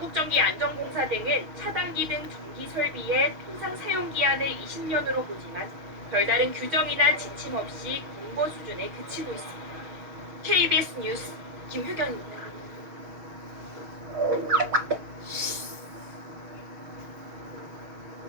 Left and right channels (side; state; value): left; late; 6.4 ms